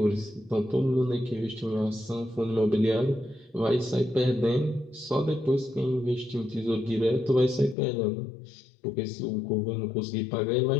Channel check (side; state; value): right; drops out; at 7.8 s